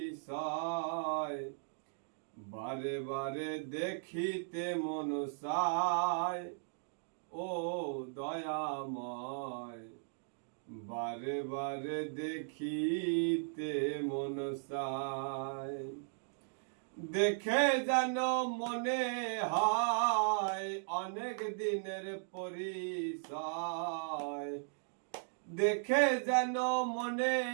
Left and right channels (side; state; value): left; silent; digital silence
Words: বারে বারে দেখিতে মন চায় ও দয়াময়। বারে বারে দেখিতে মন চায়। দেখে যেন মনে হয় অনেক দিনের পরিচয়। দেখে যেন মনে